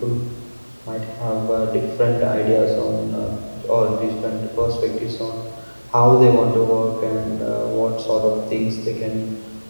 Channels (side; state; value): both; inverted; correlation -1.00